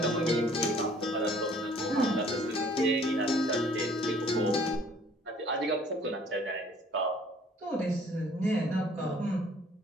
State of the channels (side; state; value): both; normal; correlation 0.56